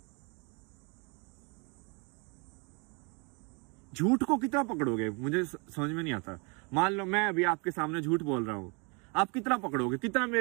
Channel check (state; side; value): quieter; left; 32.5 dB